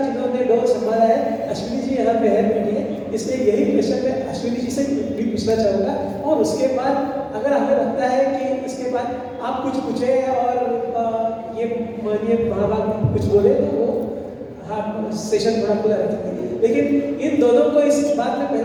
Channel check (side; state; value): both; identical; correlation 1.00